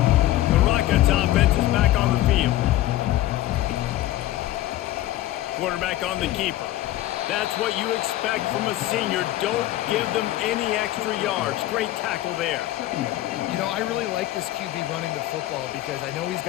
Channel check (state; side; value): quieter; right; 15.0 dB